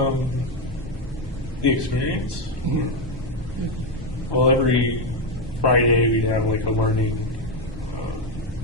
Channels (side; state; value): both; normal; correlation 0.07